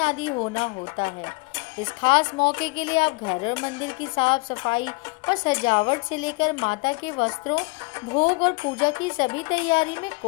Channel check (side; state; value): right; quieter; 27.4 dB